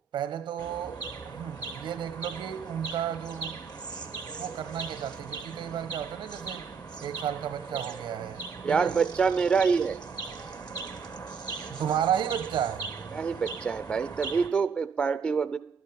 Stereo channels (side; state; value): left; quieter; 6.1 dB